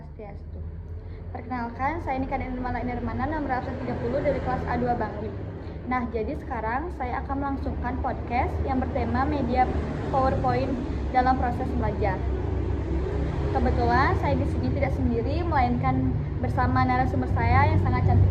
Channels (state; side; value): identical; both; correlation 1.00